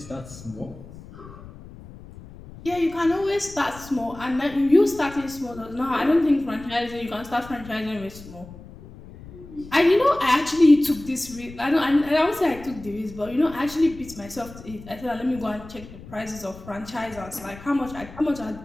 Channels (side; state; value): left; noise; rumble, 17 dB below the sound